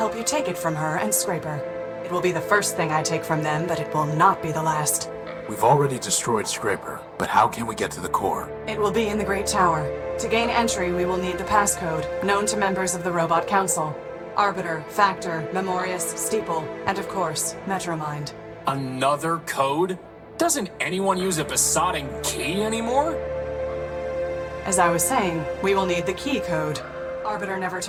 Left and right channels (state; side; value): identical; both; correlation 1.00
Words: you take it from her and Scraper. It will be the first thing I take from them, but it will not be the last. We've already destroyed Scraper, but how can we get to the core? It will be in the Great Tower. To gain entry, we will need the passcode, known to members of the Robot Council. Arbiter, Factor, Memorius, Steeple, and of course, Metromind. Another code? Doesn't anyone use a besotting key anymore? As I was saying, we will need the key code. Arbiter never